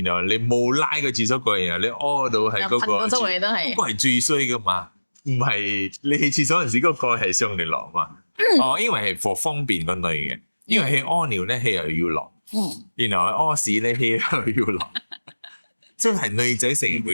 然後你冇拉個廁所蓋，然後你屙到係嗰個，周圍都係，嗰個係最衰噶嘛。唔係你去廁所嗰陣時，嗰個蓋係上定落嘛？因為係for方便個女嘅，因為佢屙尿咧，佢又要落，然後佢屙屎咧，佢又要落，即係女仔成日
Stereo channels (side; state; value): both; inverted; correlation -1.00